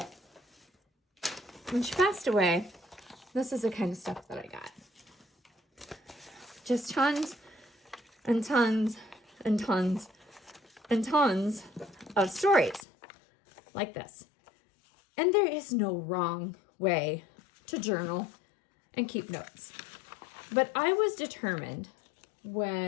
When she passed away, this is the kind of stuff that I got. Just tons and tons and tons and tons of stories like this. And there is no wrong way to journal and keep notes. But I was determined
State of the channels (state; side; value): drops out; right; at 12.9 s